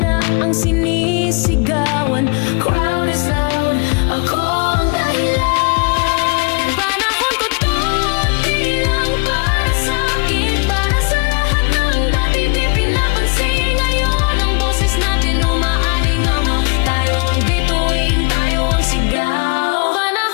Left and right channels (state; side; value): quieter; right; 33.7 dB